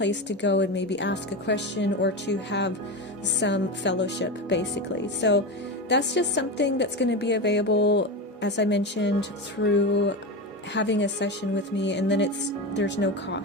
to go and maybe ask a question or to have some fellowship, basically. So that's just something that's going to be available, as I mentioned, through having a session with me, and then there's no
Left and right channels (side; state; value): both; normal; correlation 0.20